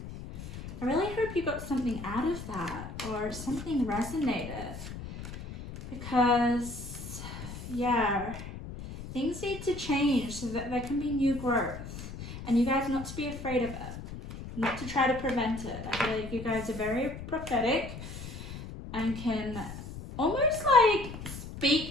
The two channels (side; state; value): left; noise; rumble, 10 dB below the sound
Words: I really hope you got something out of that, or something resonated. Because, yeah, things need to change so that there can be new growth. And you guys not to be afraid of it. Not to try to prevent it. I feel like you guys are very prophetic and can almost like